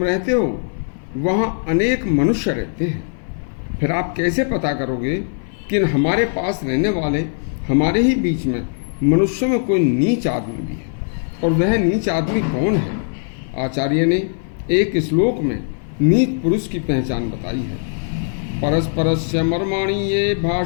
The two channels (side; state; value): right; silent; 59 dB below the other